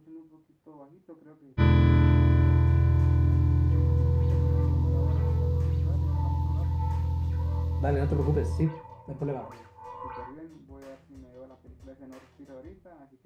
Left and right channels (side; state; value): both; identical; correlation 1.00